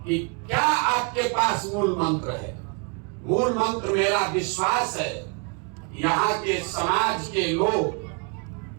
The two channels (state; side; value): quieter; left; 35.7 dB